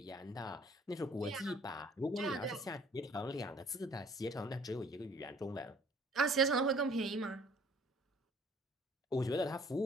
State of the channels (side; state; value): both; normal; correlation 0.56